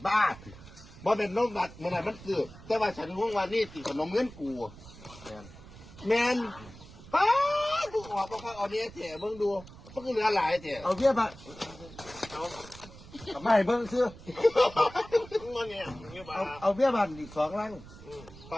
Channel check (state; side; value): noise; right; rumble, 18 dB below the sound